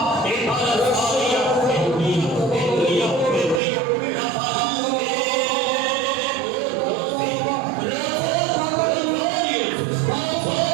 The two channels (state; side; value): drops out; left; at 3.6 s